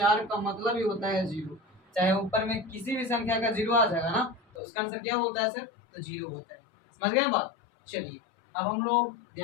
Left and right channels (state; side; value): drops out; right; at 4.4 s